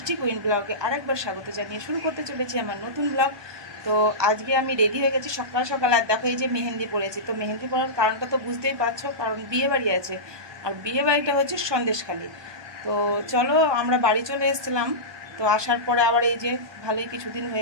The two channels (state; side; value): late; left; 1.2 ms